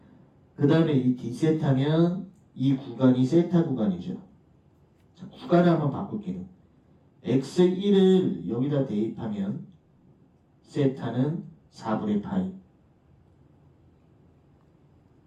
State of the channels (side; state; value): both; identical; correlation 1.00